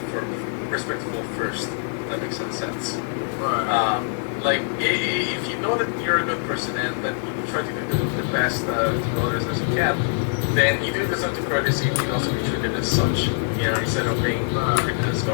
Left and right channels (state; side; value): silent; right; digital silence